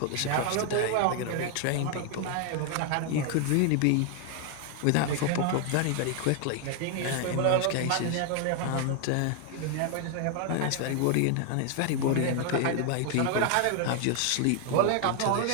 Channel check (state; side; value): different; both; correlation 0.00